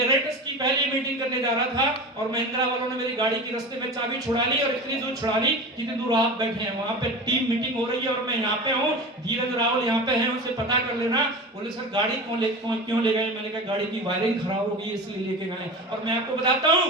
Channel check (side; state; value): both; normal; correlation 0.30